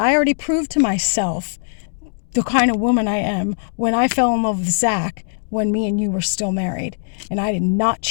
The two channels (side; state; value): right; silent; digital silence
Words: already proved to myself the kind of woman I am when I fell in love with Zach when me and you were still married. And I did not